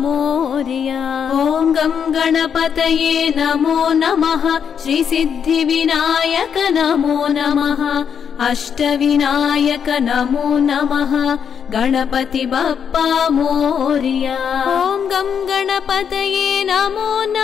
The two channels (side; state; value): right; quieter; 7.5 dB